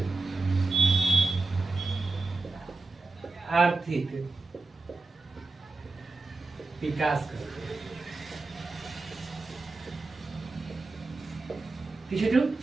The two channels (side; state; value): left; quieter; 3.4 dB